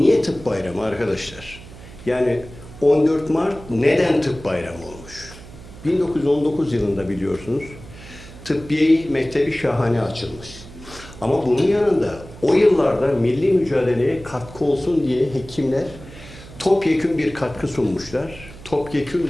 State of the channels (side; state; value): right; noise; hum, 17 dB below the sound